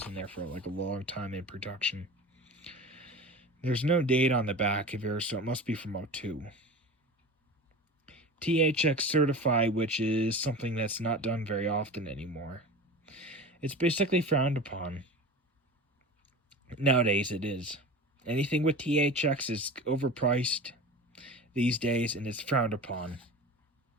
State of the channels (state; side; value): normal; both; correlation 0.33